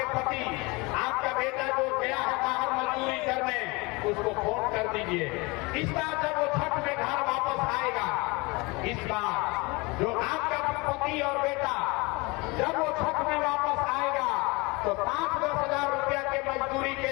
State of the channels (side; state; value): right; quieter; 25.8 dB